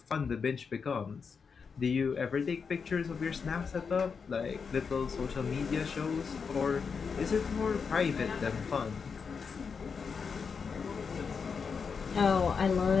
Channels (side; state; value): right; quieter; 5.7 dB